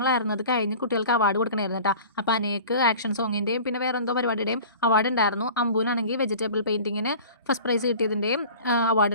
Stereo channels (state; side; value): inverted; both; correlation -0.41